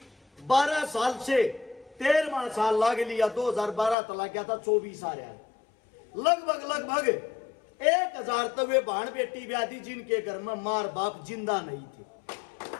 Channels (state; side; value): drops out; right; at 4.0 s